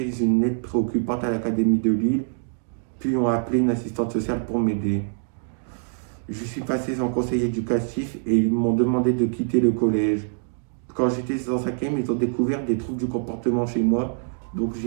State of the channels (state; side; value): silent; left; digital silence